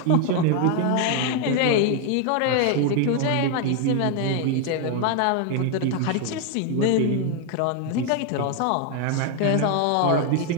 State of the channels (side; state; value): both; different; correlation 0.01